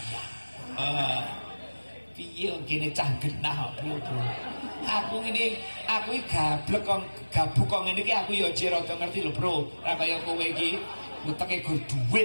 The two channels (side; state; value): both; inverted; correlation -1.00